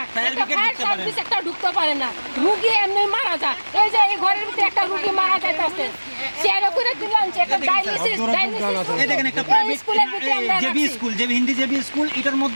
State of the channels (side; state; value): both; inverted; correlation -1.00